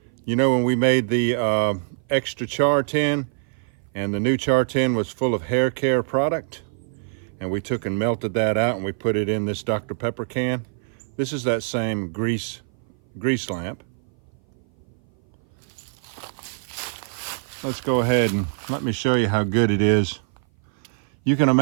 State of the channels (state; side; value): silent; left; 57 dB below the other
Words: You know, when we made the extra Char tin, and the new Char tin was full of hair care product, and we took and melted that out and we put it in this Dr. Pepper can. This is that same grease lamp. Let's go ahead and let me show you how good it is. You can